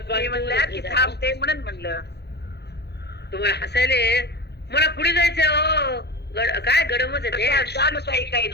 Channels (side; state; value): right; late; 0.48 ms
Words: थांबते म्हणून म्हणलं. तुम्हाला हसायले मला पुढे जायचंय. हो काय गडमच आहे ते. ताई काही